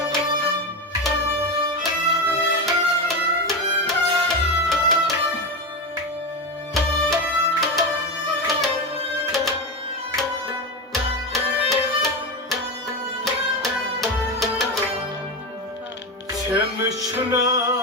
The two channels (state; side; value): normal; both; correlation 0.17